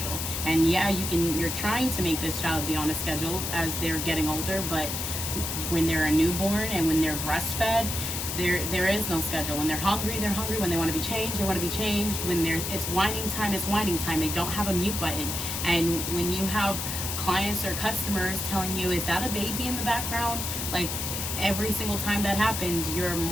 And yeah, you're trying to make this child be on a schedule as they're getting older, but when they're a newborn and when they're breastfed, there is no schedule. When they're hungry, they're hungry. When they want to be changed, they want to be changed. When it's whining time, it's whining time. They don't have a mute button. And when you have clients or customers telling you, is that a baby in the background? Like, every single time that happens, you're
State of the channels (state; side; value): noise; left; hiss, 3 dB below the sound